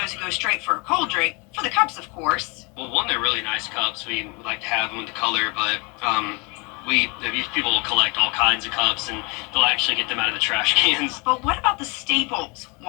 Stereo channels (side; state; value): right; quieter; 30.0 dB